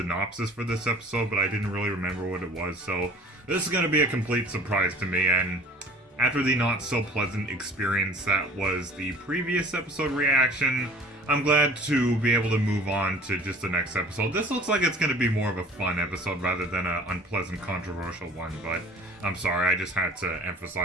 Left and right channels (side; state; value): both; normal; correlation 0.46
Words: for this episode, but I didn't really remember what it was, so this is going to be a complete surprise to me, and after the not-so-pleasant experience that was the previous episode reaction, I'm glad to be able to move on to just the next episode. This looks like it's going to be more of a fun episode rather than an unpleasant, controversial one, but I'm sorry, I just had to